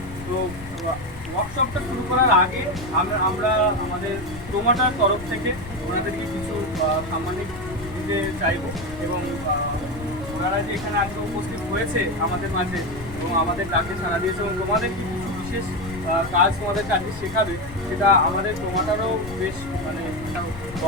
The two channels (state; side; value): noise; left; rumble, 13 dB below the sound